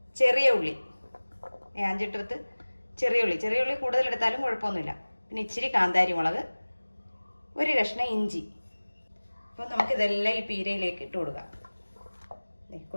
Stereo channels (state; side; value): inverted; both; correlation -1.00